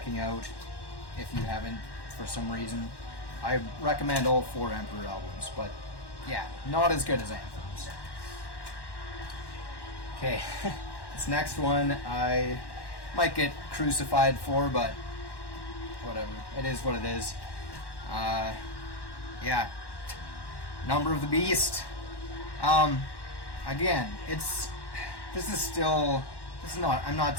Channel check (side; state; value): right; late; 1.1 ms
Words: out if you haven't for some reason. I recommend all 4 Emperor albums, but yeah, not as good as Anthems. Okay, this next one I might get crucified for, but whatever. It is what it is. Yeah, Number of the Beast. Again, I'm